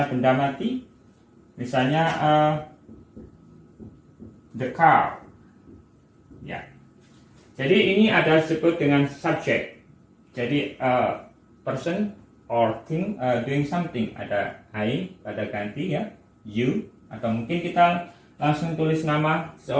benda mati. Misalnya the car. Ya. Jadi ini ada disebut dengan subjek. Jadi person or thing doing something. Ada I pada ganti ya, you, atau mungkin kita langsung tulis nama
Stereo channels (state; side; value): identical; both; correlation 1.00